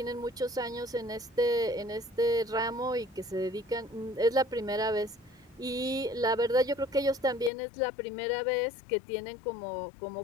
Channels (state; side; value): drops out; right; at 7.5 s